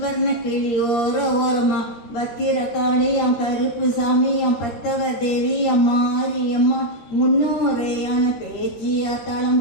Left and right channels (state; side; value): late; right; 13 ms